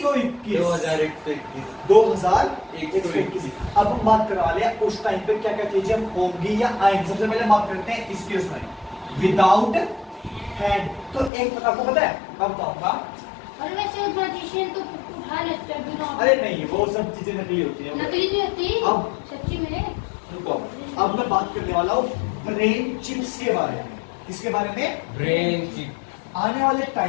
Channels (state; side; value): drops out; right; at 11.3 s